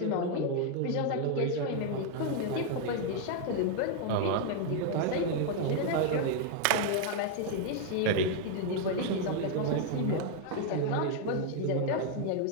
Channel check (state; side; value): different; both; correlation 0.00